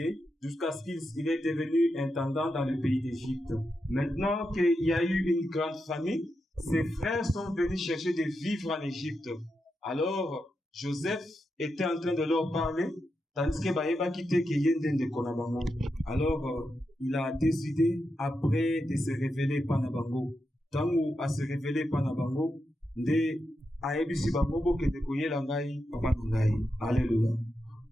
jusqu'à ce qu'il est devenu intendant dans le pays d'Égypte. Maintenant qu'il y a eu une grande famine, ses frères sont venus chercher de vivre en Égypte. Alors, Joseph était en train de leur parler, tandis que Baïba quittait Keyenden de Konabango. Alors, il a décidé, après de se révéler Panabango, tant où à se révéler Panabango, de Aebisi Babobo que de Koyela Ngai, Papa Ngai. Alléluia.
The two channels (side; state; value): both; normal; correlation 0.86